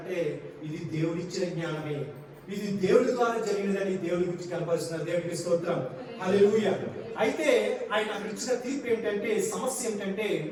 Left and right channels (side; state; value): both; identical; correlation 1.00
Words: ఇది దేవుడిచ్చిన జ్ఞానమే, ఇది దేవుడి ద్వారా జరిగినదని దేవుడి గురించి కనపరుస్తున్నారు. దేవుడికి స్తోత్రం. హల్లెలూయా. అయితే ఆయన అక్కడ ఇచ్చిన తీర్పు ఏంటంటే, సమస్య ఏంటంటే,